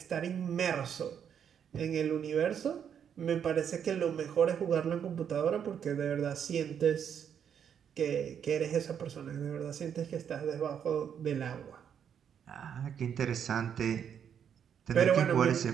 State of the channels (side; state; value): left; quieter; 8.3 dB